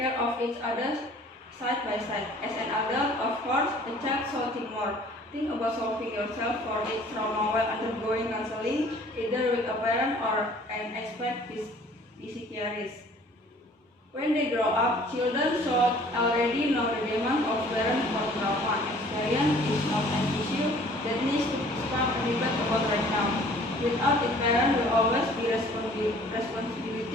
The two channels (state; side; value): normal; both; correlation 0.53